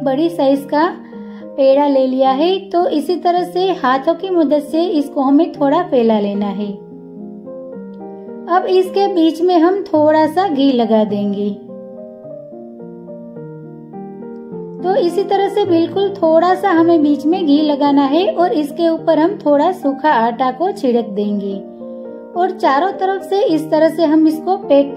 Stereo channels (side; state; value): both; identical; correlation 1.00